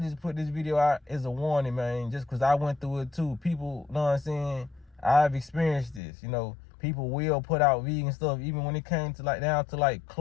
put this video out as a warning, man, just because I went through it too. People, know what I'm saying? I've experienced this. You know, people will put out vegan stuff, even when it came to down to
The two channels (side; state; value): right; drops out; at 6.0 s